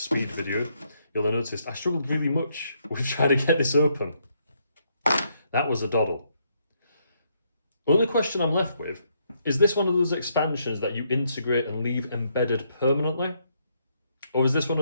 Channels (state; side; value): inverted; both; correlation -0.74